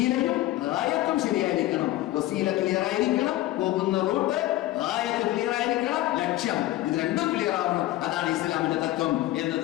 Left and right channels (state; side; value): quieter; right; 16.2 dB